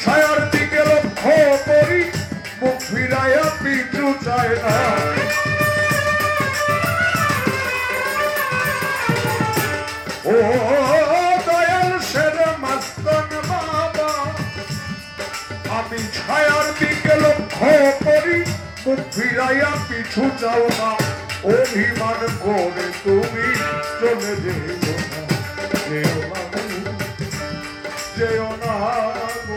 ছায়ার দিকে লক্ষ্য করি, মুখ ফিরাইয়া পিছু চায় না। ও দয়াল সের মাস্তান বাবা, আমি ছায়ার দিকে লক্ষ্য করি, মুখ ফিরাইয়া পিছু চাও না। অভিমান করে তুমি চলে যেও না, যেও না যেও না গো,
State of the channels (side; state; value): both; identical; correlation 1.00